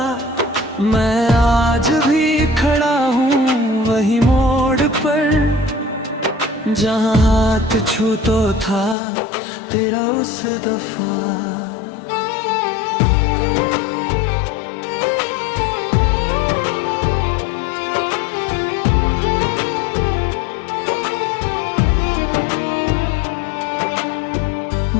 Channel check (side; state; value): right; drops out; at 9.0 s